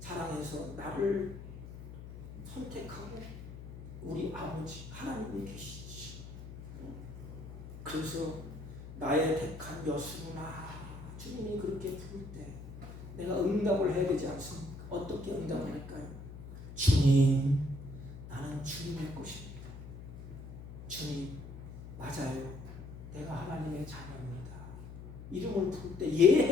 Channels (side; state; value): left; noise; hum, 12 dB below the sound